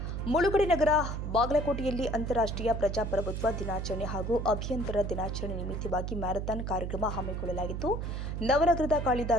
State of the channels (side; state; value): right; noise; hum, 4 dB below the sound